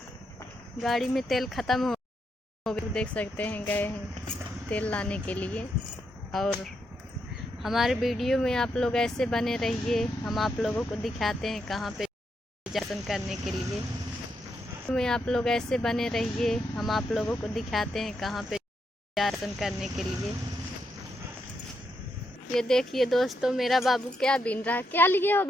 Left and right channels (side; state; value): both; normal; correlation 0.81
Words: गाड़ी में तेल ख़त्म हो गया, देख सकते हैं गए हैं तेल लाने के लिए। और हमारे वीडियो में आप लोग ऐसे बने रहिए, हम आप लोगों को दिखाते हैं कहाँ पे दर्शन करने के लिए। में आप लोग ऐसे बने रहिए, हम आप लोगों को दिखाते हैं कहाँ पे दर्शन करने के लिए। ये देखिए दोस्तों, मेरा बाबू क्या बीन रहा है। क्या लिए हो